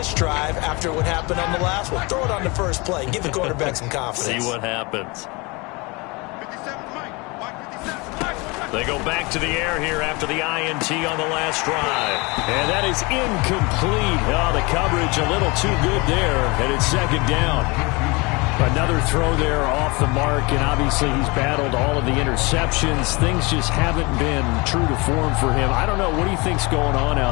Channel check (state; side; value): quieter; right; 26.6 dB